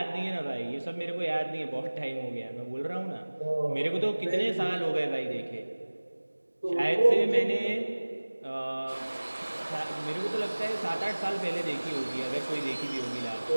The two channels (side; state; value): both; inverted; correlation -1.00